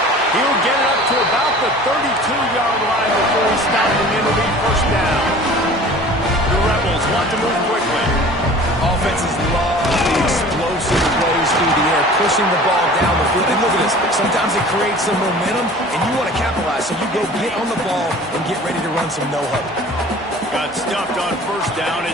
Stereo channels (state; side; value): normal; both; correlation 0.44